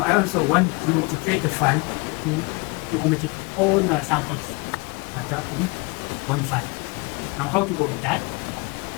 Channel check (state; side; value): quieter; right; 28.4 dB